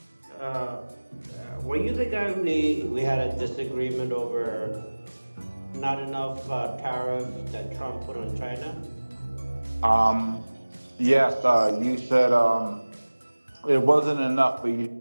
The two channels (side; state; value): both; inverted; correlation -1.00